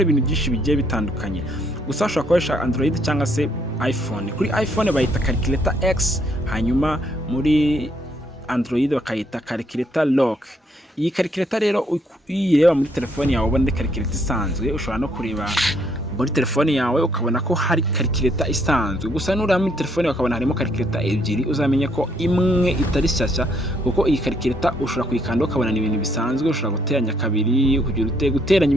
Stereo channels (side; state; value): both; normal; correlation 0.70